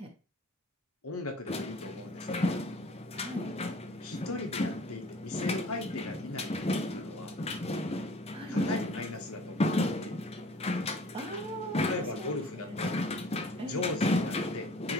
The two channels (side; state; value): both; normal; correlation 0.49